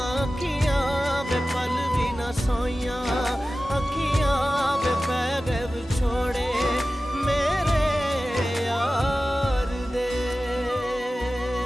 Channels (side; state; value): both; normal; correlation 0.95